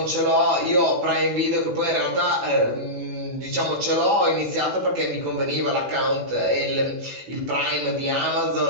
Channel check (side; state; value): left; late; 16 ms